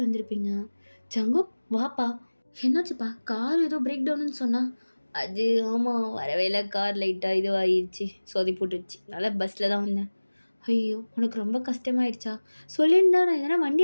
வந்திருப்பீங்க. ஜங்கு வாப்பா, என்னாச்சுப்பா, கார் ஏதோ பிரேக் டவுன்னு சொன்னா. அது ஆமாம், வரவே இல்லை, கார் லைட்டாக இதுவாகிடுச்சு, சொதி போட்டுடுச்சு, அதனால் பஸ்ஸில் தான் வந்தேன். ஐயோ உனக்கு ரொம்ப கஷ்டமாயிடுச்சா, சொல்லியிருந்தா நான் எதனா வண்டி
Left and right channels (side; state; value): both; inverted; correlation -1.00